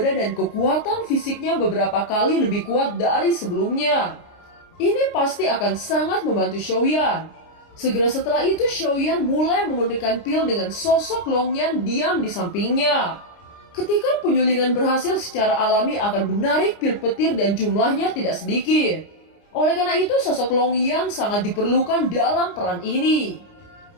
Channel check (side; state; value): right; late; 29 ms